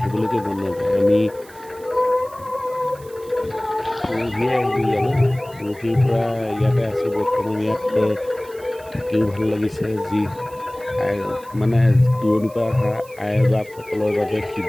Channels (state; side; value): noise; right; hiss, 23 dB below the sound